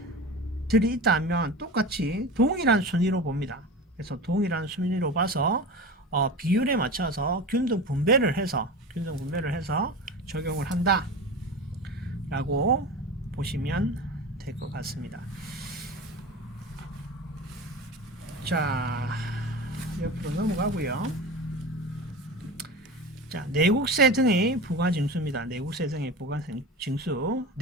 있다면 똑같이 동일한 순위로 봅니다. 그래서 동일한 순위로 봐서 비율에 맞춰서 균등 분배를 해서 적용을 한다 라고 보시면 될 것 같습니다. 자, 옆으로 넘어가고요. 자, 내국세 등의 부가징수입니다. 내국세 등의 부가징수.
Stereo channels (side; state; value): both; normal; correlation 0.30